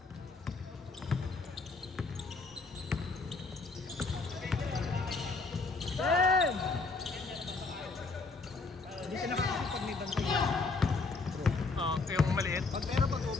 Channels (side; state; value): right; quieter; 4.0 dB